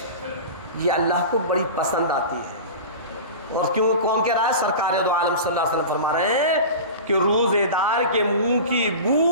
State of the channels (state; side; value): inverted; both; correlation -0.32